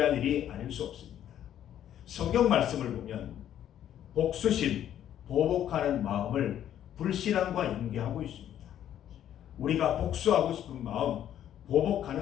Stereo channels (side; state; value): right; quieter; 10.8 dB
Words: 일이 아닐 수 없습니다. 성경 말씀을 보면 복수심, 보복하는 마음을 불신앙과 연계하고 있습니다. 우리가 복수하고 싶은 마음,